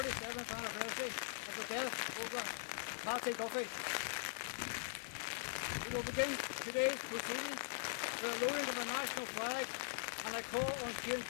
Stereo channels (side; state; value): right; silent; digital silence